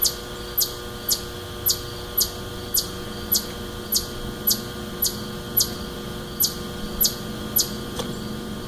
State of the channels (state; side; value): identical; both; correlation 1.00